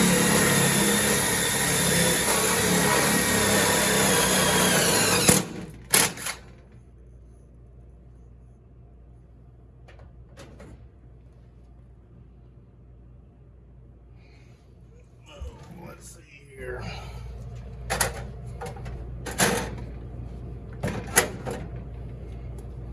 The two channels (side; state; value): both; identical; correlation 1.00